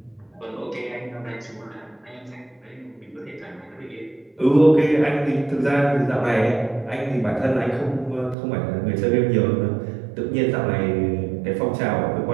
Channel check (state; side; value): drops out; left; at 8.3 s